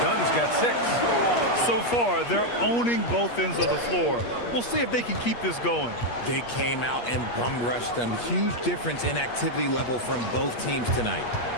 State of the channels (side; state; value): right; late; 8.4 ms